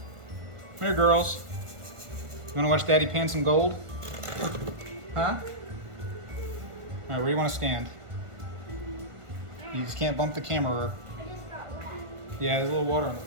Come here, girls. You wanna watch Daddy pan some gold? Huh? All right, where do you wanna stand? You just can't bump the camera. Yeah, there's a little water on the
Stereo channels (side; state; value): left; late; 1.5 ms